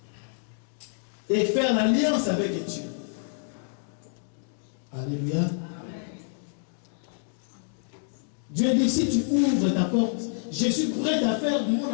Et faire l'alliance avec Dieu. Alléluia. Amen. Dieu dit, si tu ouvres ta porte, je suis prêt à faire mon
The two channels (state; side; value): silent; right; digital silence